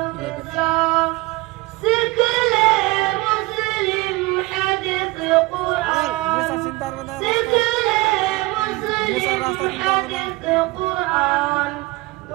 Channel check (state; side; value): quieter; left; 22.0 dB